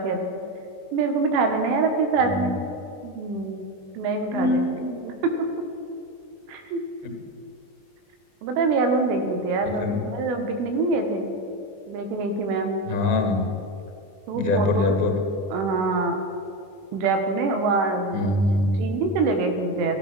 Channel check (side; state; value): left; late; 21 ms